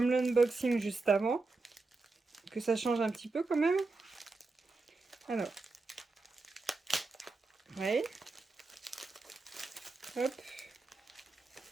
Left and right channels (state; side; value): quieter; left; 3.6 dB